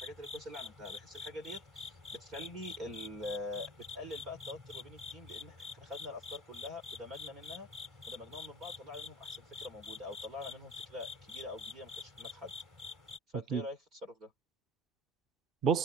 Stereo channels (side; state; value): both; normal; correlation 0.41